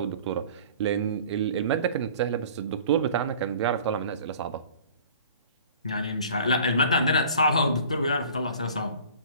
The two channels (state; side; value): inverted; both; correlation -0.46